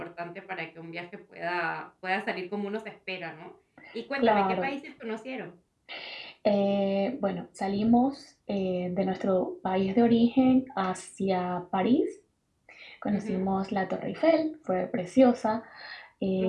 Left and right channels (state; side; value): identical; both; correlation 1.00